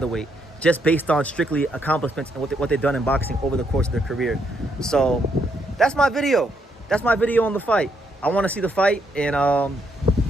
just based on strictly accomplishments and what they've done in boxing over the course of their career. So, that's my video. That's my video on the fight. I want to see the fight, and I'll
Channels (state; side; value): normal; both; correlation 0.75